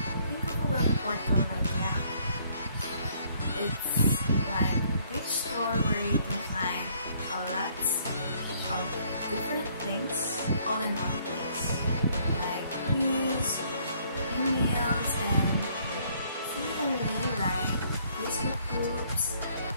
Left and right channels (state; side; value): inverted; both; correlation -0.64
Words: Think of a web portal like Yahoo. It's like a big store where you can find a lot of different things all in one place, like news, emails, and similarly like Facebook groups,